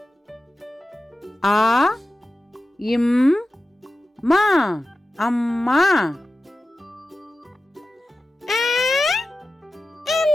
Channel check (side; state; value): both; normal; correlation 0.93